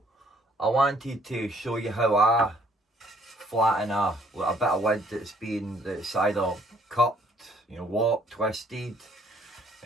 I wanted to show you how I flatten a bit of wood that's either cut, warped, twisted,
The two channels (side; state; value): both; normal; correlation 0.62